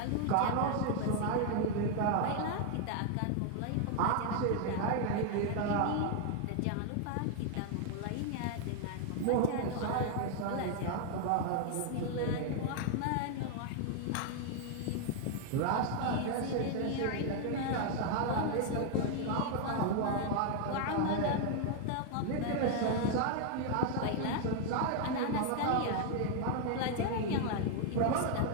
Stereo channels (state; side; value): different; both; correlation 0.00